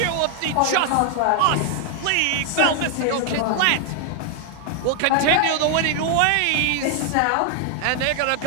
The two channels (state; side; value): different; both; correlation 0.00